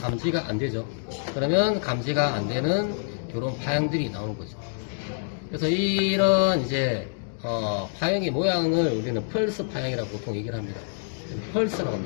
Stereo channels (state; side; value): silent; right; digital silence